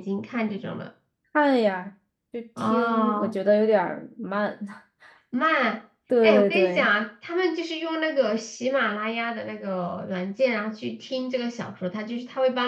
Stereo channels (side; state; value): both; identical; correlation 1.00